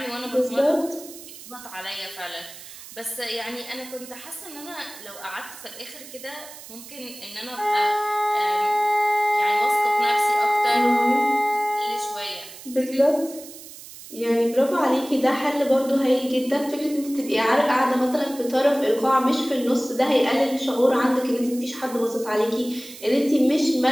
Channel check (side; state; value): right; noise; hiss, 16 dB below the sound